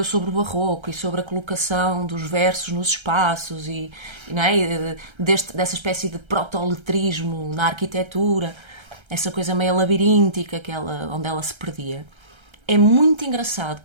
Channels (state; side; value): late; left; 1.3 ms